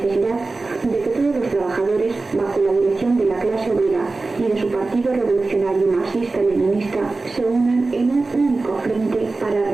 de que todos los trabajadores, bajo la dirección de la clase obrera y de su partido revolucionario marxista-leninista, se unan en un único frente para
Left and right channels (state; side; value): quieter; left; 3.5 dB